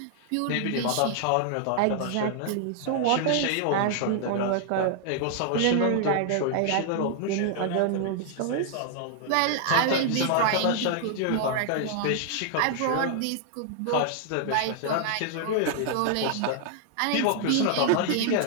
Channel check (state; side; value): different; both; correlation -0.01